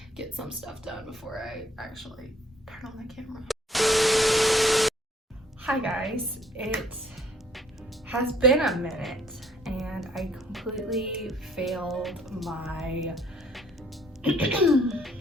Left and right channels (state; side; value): normal; both; correlation 0.62